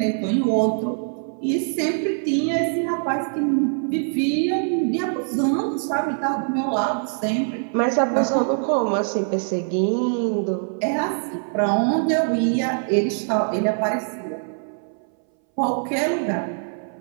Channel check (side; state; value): left; silent; 61 dB below the other